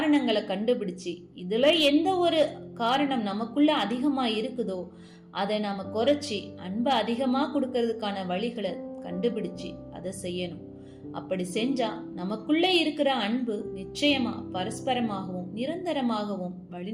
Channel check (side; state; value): both; identical; correlation 1.00